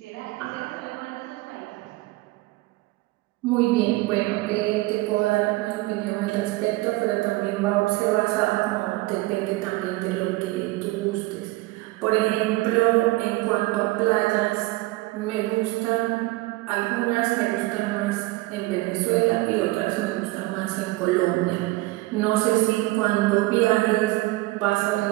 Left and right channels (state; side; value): quieter; left; 20.4 dB